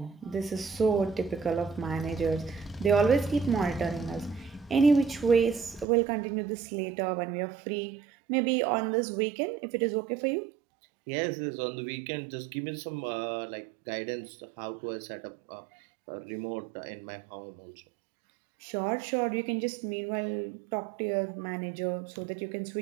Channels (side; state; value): left; drops out; at 5.9 s